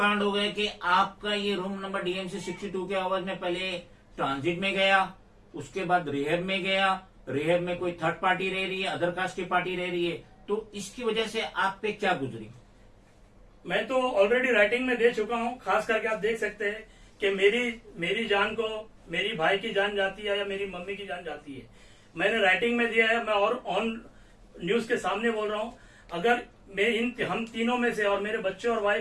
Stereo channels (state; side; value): identical; both; correlation 1.00